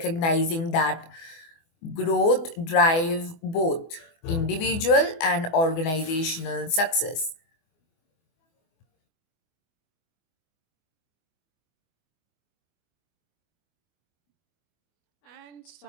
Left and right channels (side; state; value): right; late; 24 ms